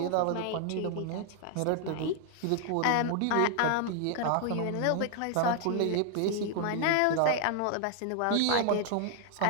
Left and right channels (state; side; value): different; both; correlation 0.00